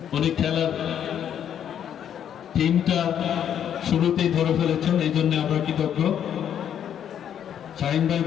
উনি খেলার টিমটা শুরুতেই ধরে ফেলেছেন, এই জন্য আমরা কৃতজ্ঞ। শাহিন ভাই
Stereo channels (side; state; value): right; quieter; 9.4 dB